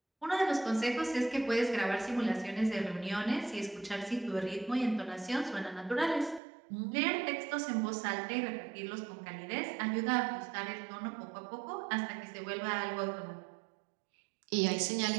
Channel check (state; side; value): drops out; left; at 6.4 s